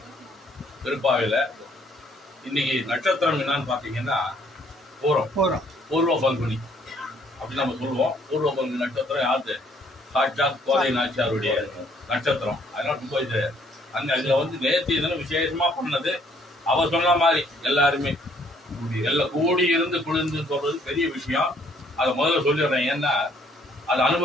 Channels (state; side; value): normal; both; correlation 0.64